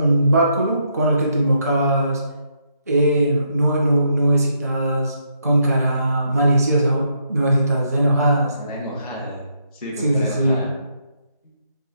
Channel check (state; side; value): inverted; both; correlation -0.76